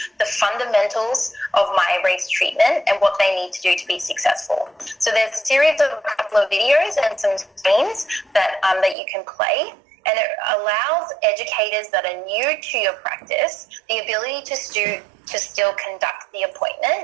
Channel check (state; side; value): drops out; left; at 9.0 s